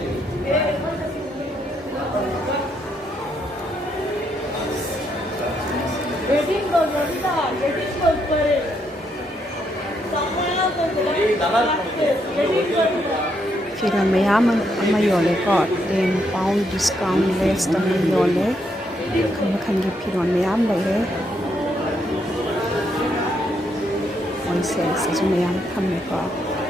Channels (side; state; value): both; normal; correlation 0.76